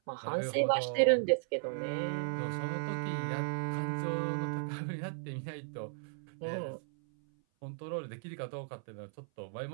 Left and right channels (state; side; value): silent; left; 54 dB below the other